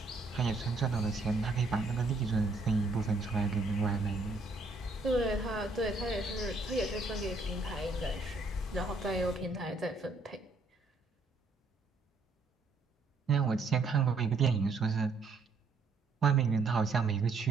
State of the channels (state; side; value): quieter; left; 3.5 dB